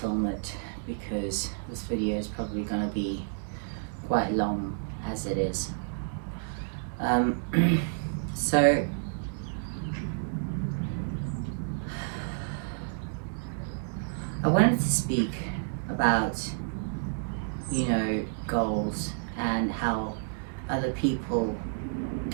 it because this video is probably going to be quite long as it is. So I wanted to speak about, you know, goals and how other people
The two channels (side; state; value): left; silent; digital silence